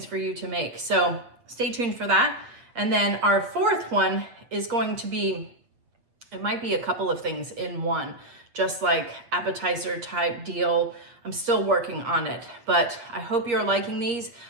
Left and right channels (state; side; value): late; left; 8.5 ms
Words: for you to make. So stay tuned for that. And then our fourth one is going to be, it might be a couple of things in one, just like appetizer type deal. I'm still working on it, but I hope you're liking these.